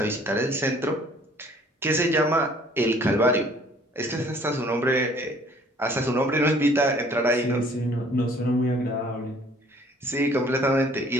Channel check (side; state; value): both; normal; correlation 0.56